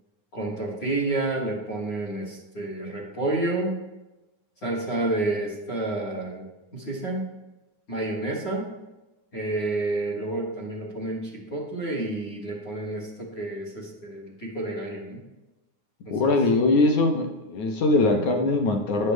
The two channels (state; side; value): late; right; 9.6 ms